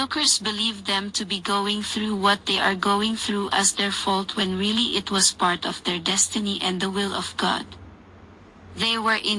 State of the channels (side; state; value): both; identical; correlation 1.00